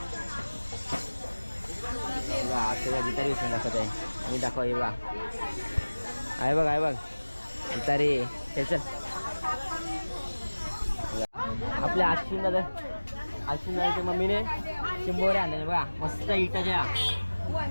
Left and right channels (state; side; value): inverted; both; correlation -1.00